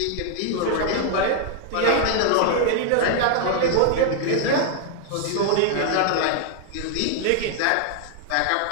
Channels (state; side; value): different; both; correlation 0.00